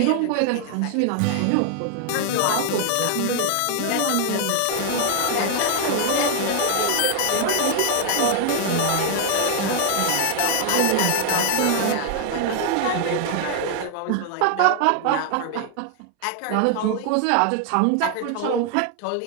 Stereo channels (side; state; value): both; different; correlation 0.00